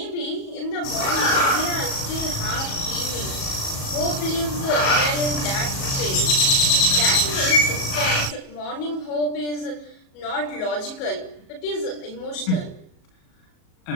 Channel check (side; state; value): right; late; 37 ms